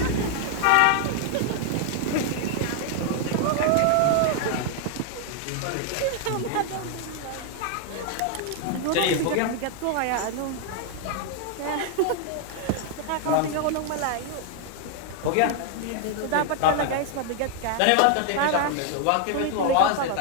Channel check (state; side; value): different; both; correlation 0.00